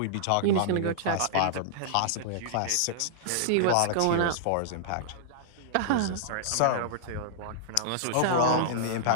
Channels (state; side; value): different; both; correlation -0.02